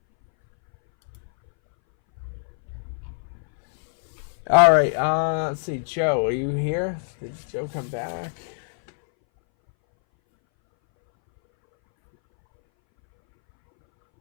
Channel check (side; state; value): right; silent; 60 dB below the other